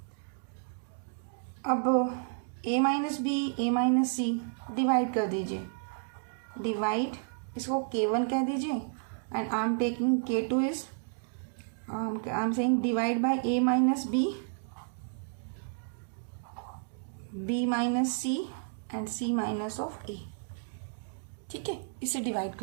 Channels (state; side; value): silent; left; digital silence